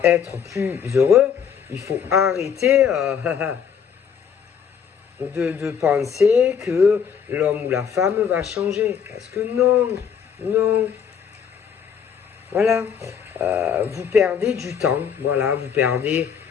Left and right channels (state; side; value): quieter; right; 7.4 dB